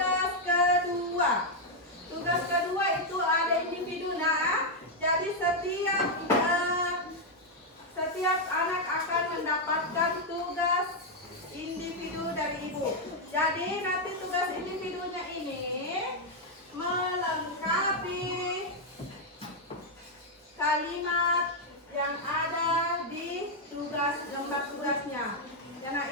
kedua. Tugas kedua itu ada individu nah. Jadi setiap anak akan mendapatkan tugas individu dari ibu. Jadi nanti tugas individunya ini melengkapi kalimat yang ada di lembar tugasnya. Ya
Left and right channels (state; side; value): normal; both; correlation 0.00